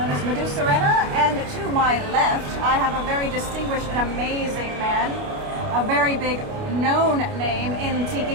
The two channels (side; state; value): left; late; 29 ms